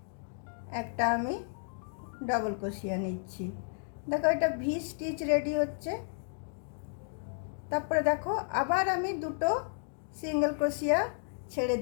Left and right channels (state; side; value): silent; right; digital silence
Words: একটা আমি ডবল ক্রোশিয়া নিচ্ছি। দেখো এটা ভি স্টিচ রেডি হচ্ছে। তারপরে দেখো আবার আমি দুটো সিঙ্গেল ক্রোশিয়া ছেড়ে